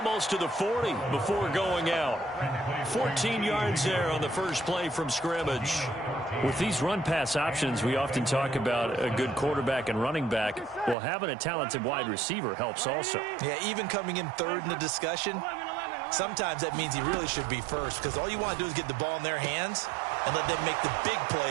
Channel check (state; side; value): drops out; left; at 11.0 s